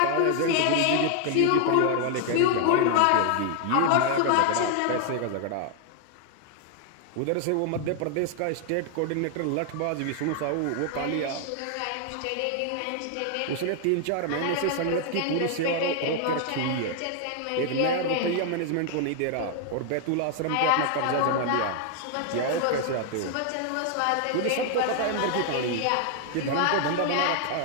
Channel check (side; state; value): both; different; correlation 0.00